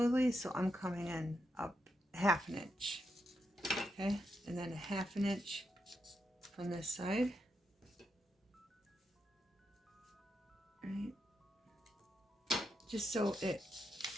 so I'm coming in up 1/2 an inch. Okay, and then 1/2 an inch from this side. Right. Just so it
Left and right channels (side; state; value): both; normal; correlation 0.83